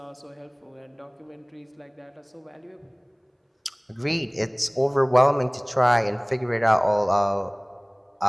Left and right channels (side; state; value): both; identical; correlation 1.00